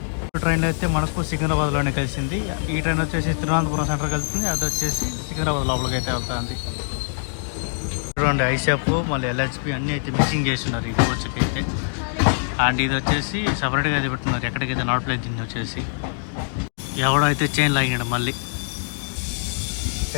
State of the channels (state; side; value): silent; right; digital silence